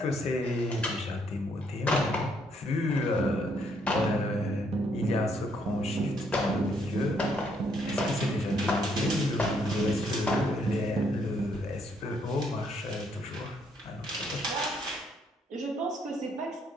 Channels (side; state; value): both; normal; correlation 0.71